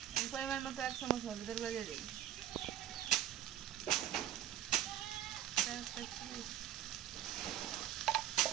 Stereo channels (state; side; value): quieter; left; 11.5 dB